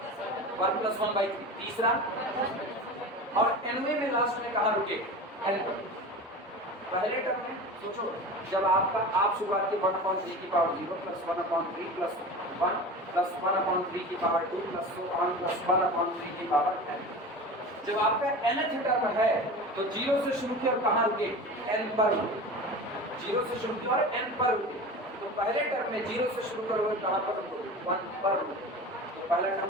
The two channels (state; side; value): normal; both; correlation 0.32